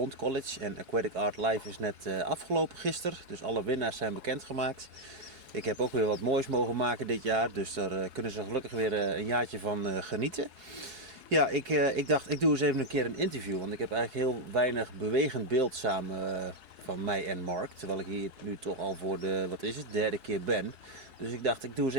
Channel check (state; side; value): late; left; 4.7 ms